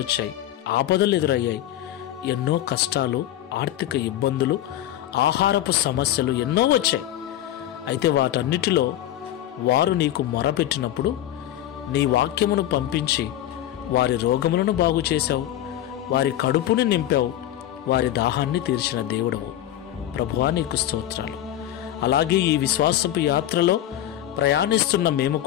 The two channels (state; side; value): quieter; right; 12.6 dB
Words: వచ్చాయి, ఆపదలు ఎదురయ్యాయి, ఎన్నో కష్టాలు, ఆర్థిక ఇబ్బందులు, ఆహారపు సమస్యలు ఎన్నో వచ్చాయి. అయితే వాటన్నిటిలో వారు నీకు మొరపెట్టినప్పుడు నీ వాక్యమును పంపించి వారి రోగములను బాగు చేశావు, వారి కడుపుని నింపావు, వారి దాహాన్ని తీర్చిన దేవుడవు. ప్రభువా, నీకు స్తోత్రాలు. అలాగే ఈ విశ్వాసపు యాత్రలో ప్రయాణిస్తున్న మేము